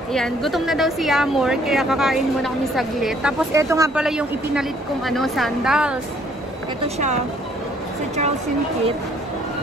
Ayan, gutom na daw si Yamor, kaya kakain muna kami saglit. Tapos ito nga pala yung ipinalit kong sandals. Ito siya, sa Charles & Kit.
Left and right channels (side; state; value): both; normal; correlation 0.62